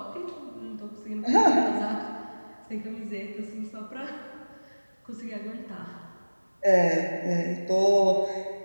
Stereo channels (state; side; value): inverted; both; correlation -1.00